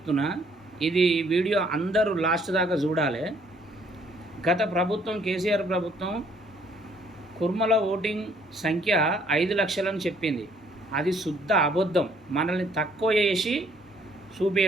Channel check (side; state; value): both; normal; correlation 0.64